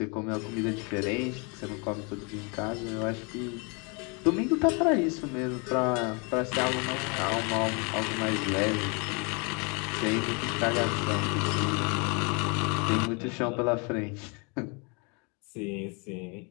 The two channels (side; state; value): right; quieter; 32.9 dB